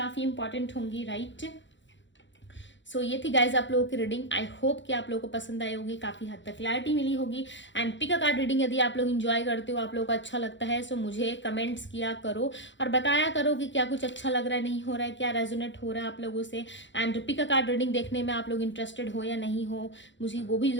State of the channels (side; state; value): right; late; 0.54 ms